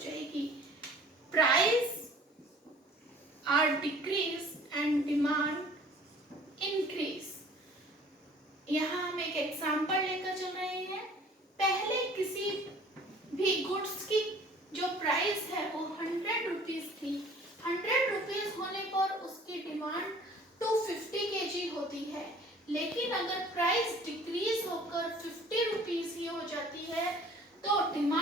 जाएगी. Price are decrease and demand increase. यहाँ हम एक एग्जाम्पल लेकर चल रहे हैं. पहले किसी भी गुड्स की जो प्राइस है वो 100 रुपीज थी. 100 रुपीज होने पर उसकी डिमांड 250 kg होती है. लेकिन अगर प्राइस डिक्रीज होकर 50 रुपीज ही हो जाती है तो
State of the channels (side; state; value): both; normal; correlation 0.50